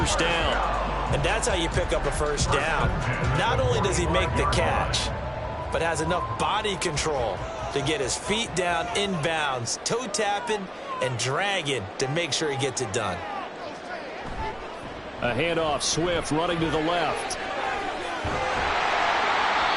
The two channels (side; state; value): both; identical; correlation 1.00